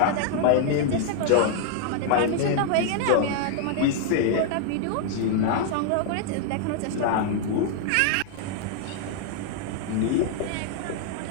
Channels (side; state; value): both; different; correlation 0.00